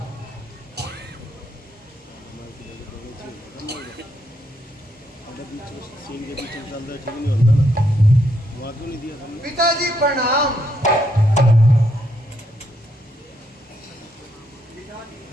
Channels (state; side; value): normal; both; correlation 0.76